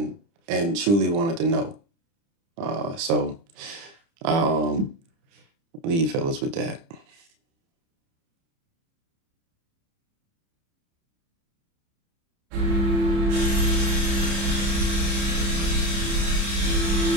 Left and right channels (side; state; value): left; late; 30 ms